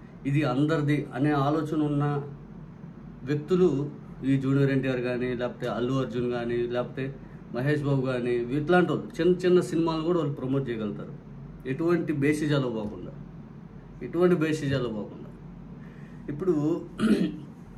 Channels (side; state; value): both; identical; correlation 1.00